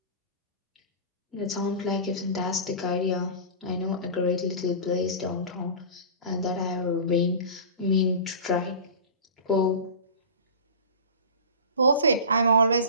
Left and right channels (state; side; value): inverted; both; correlation -0.33